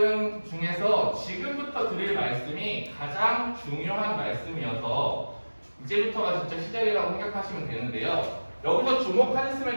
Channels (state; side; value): inverted; both; correlation -1.00